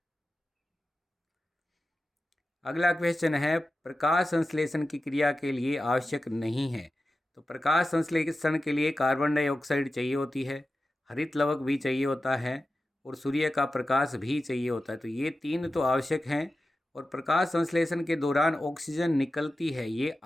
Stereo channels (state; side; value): normal; both; correlation 0.93